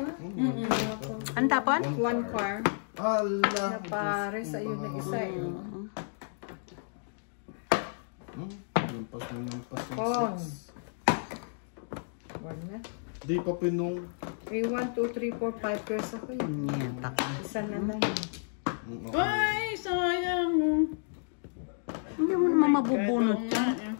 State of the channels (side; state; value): right; silent; digital silence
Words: Ang tapon? One car. Ala. Na pares. Ayun na isa eh. Lampas na lampas yung Pong. 6. One na. Di pa pinong. 3, 1, 2, 3, 4, 5 pairs ako eh. Yan, taka. Isa na lang. Ay, sayang. Hindi mo naman mabubunot